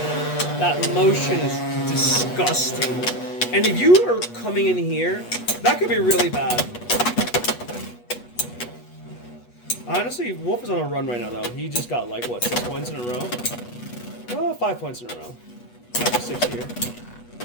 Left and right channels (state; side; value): late; right; 8.3 ms